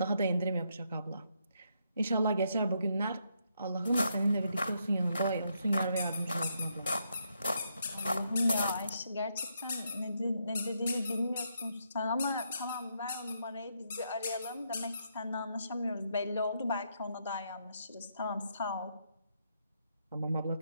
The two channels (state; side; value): inverted; both; correlation -0.77